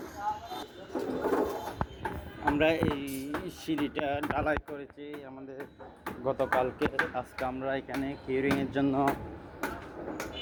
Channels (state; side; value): identical; both; correlation 1.00